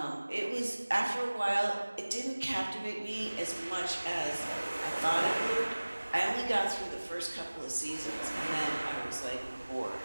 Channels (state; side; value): inverted; both; correlation -1.00